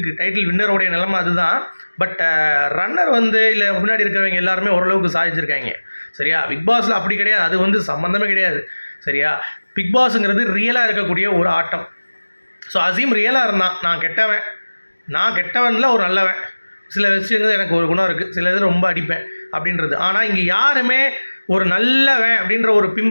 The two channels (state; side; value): inverted; both; correlation -1.00